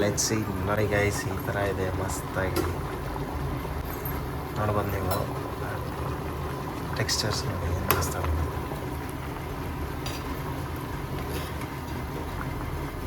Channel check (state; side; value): identical; both; correlation 1.00